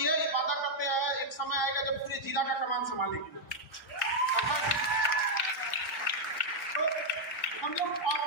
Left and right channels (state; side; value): normal; both; correlation -0.03